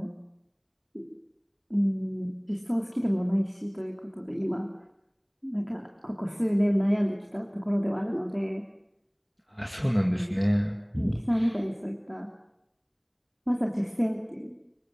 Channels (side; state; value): both; identical; correlation 1.00